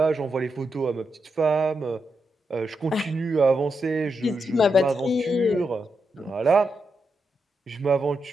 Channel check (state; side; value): normal; both; correlation 0.84